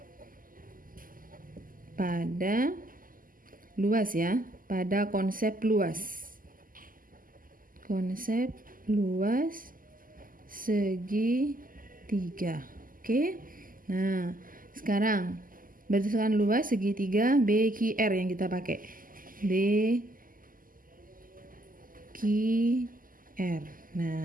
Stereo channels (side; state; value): left; late; 0.41 ms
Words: pada luas ya, pada konsep luas. Konsep luas segitiga. Oke. Nah, sekarang berdasarkan luas segitiga BQR yang kita pakai. BQR.